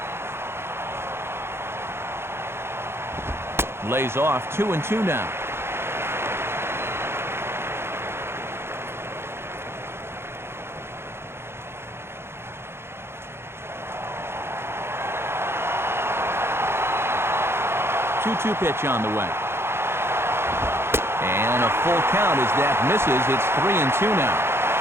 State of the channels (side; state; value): left; late; 0.12 ms